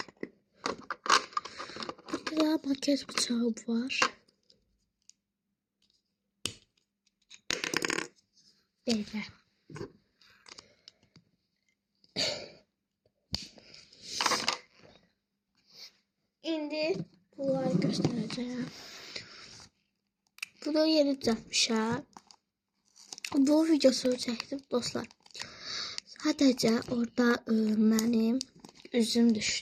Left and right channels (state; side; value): identical; both; correlation 1.00